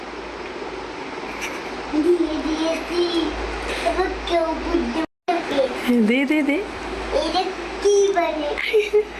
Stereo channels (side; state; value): both; identical; correlation 1.00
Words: দে দে দে এটা কি বলে